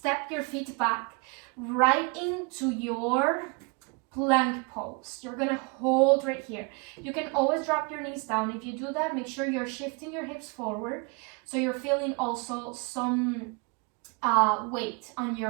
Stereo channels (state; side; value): quieter; left; 31.1 dB